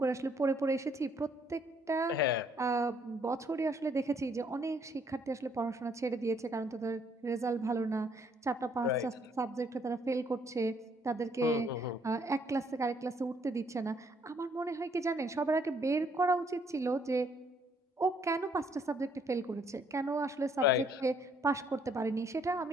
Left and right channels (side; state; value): both; normal; correlation 0.66